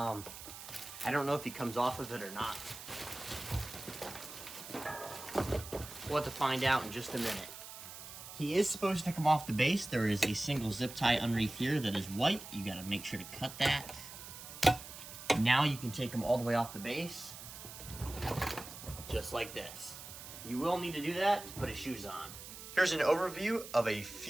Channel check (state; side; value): noise; right; hiss, 13 dB below the sound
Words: don't know if he comes off of it or not. We'll have to find out in just a minute. He is supposed to come off the base. There is a single zip tie underneath here that is white. You gotta make sure to cut that. Now you can take him all the way off the base. Just like this. You will need to do that to put his shoes on. Here's an overview of a